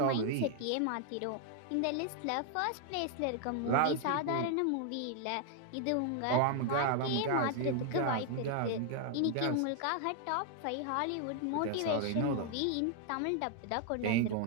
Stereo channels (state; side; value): different; both; correlation 0.00